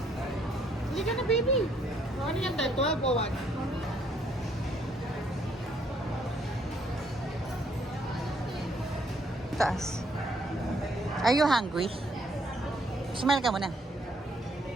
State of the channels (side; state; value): both; normal; correlation 0.68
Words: Hindi ka na, baby. Ano yan tayo? 12 o 1? Taas. Are you hungry? Smile ka muna.